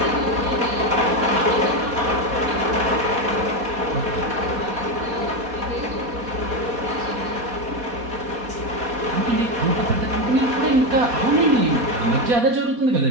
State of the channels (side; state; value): left; late; 4.2 ms